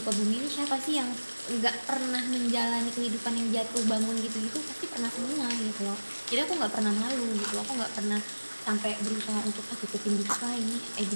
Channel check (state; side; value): inverted; both; correlation -1.00